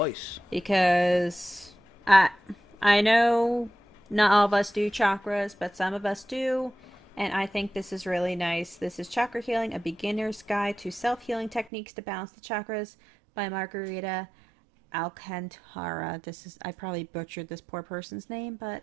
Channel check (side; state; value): left; drops out; at 11.7 s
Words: because I know not all of us do chakras, but some of us do, and I think this is really nice. This is Chakra Healing, a beginner's guide to self-healing techniques to balance the chakras by Margarita Alcantara. I probably butchered this poor person's name, but